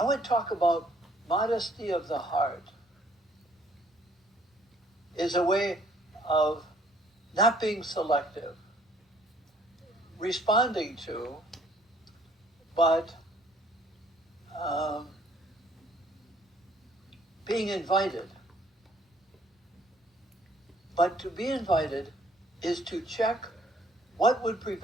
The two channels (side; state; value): both; normal; correlation 0.61